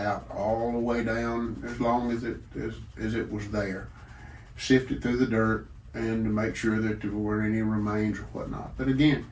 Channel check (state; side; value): identical; both; correlation 1.00